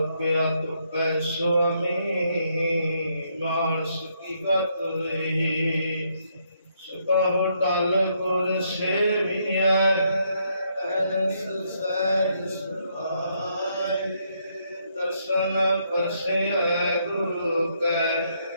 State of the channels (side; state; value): both; inverted; correlation -0.74